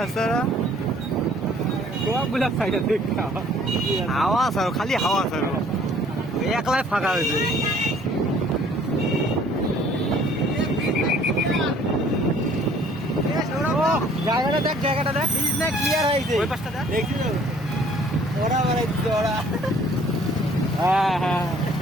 গোয়াগুলা সাইডে দেখতে হাওয়া স্যার খালি হাওয়া স্যার একলাই ফাঁকা হয়েছে জায়গাটা দেখ ক্লিয়ার হয়েছে ওই পাশটা দেখ দেখছি তো ওরা বেড়াইছে ওরা হ্যাঁ হ্যাঁ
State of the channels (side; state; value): both; normal; correlation 0.57